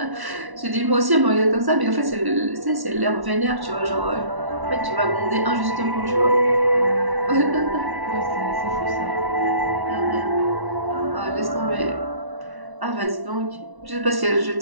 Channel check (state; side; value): late; left; 1.1 ms